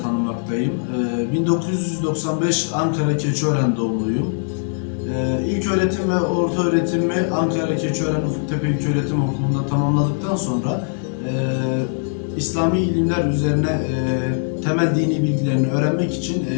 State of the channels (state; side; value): silent; right; digital silence